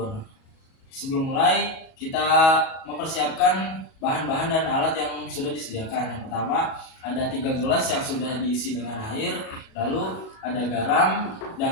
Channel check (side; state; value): right; late; 37 ms